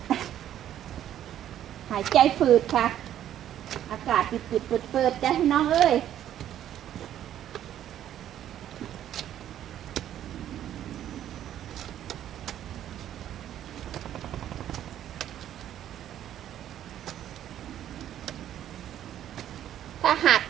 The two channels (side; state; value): left; quieter; 11.2 dB